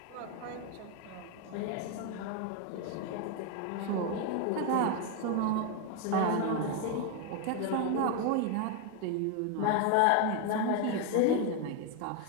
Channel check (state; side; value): different; both; correlation 0.01